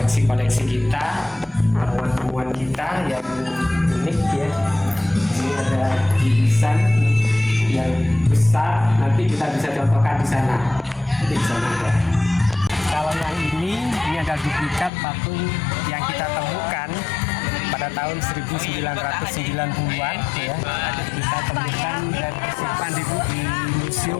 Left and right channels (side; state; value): right; drops out; at 14.9 s